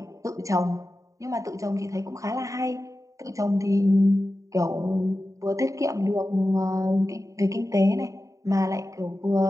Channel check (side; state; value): left; late; 0.16 ms